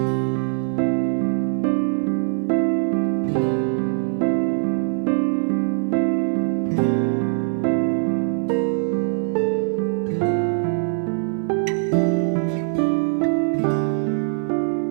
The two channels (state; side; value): silent; left; 64 dB below the other